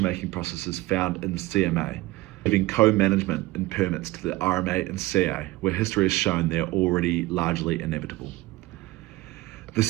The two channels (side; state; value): left; quieter; 19.5 dB